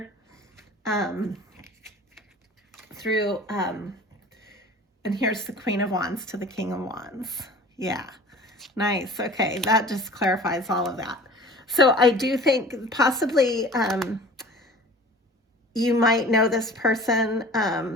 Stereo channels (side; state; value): both; normal; correlation 0.43